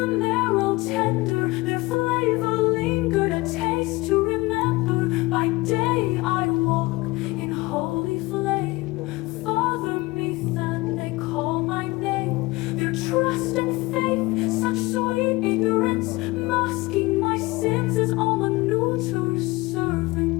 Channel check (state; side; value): quieter; right; 21.8 dB